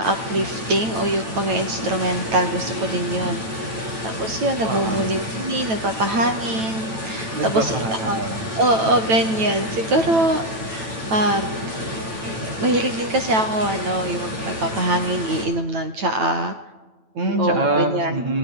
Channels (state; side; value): late; left; 9.1 ms